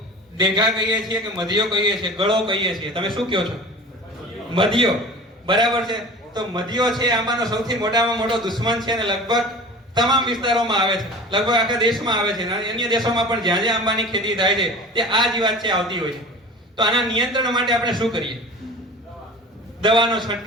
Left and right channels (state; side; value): normal; both; correlation 0.38